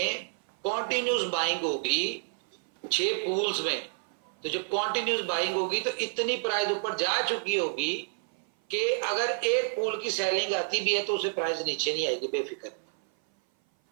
कॉन्टिन्यूस बाइंग होगी 6 पूल्स में, तो जब कॉन्टिन्यूस बाइंग होगी तो इतनी प्राइस ऊपर जा चुकी होगी कि अगर एक पूल की सेलिंग आती भी है तो उसे प्राइस नीचे नहीं आएगी, बेफिक्र।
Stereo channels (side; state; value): left; silent; 56 dB below the other